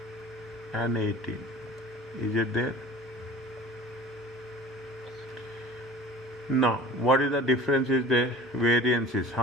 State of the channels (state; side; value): normal; both; correlation 0.43